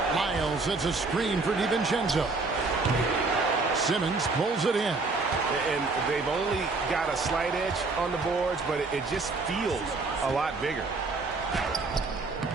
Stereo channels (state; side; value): quieter; left; 3.7 dB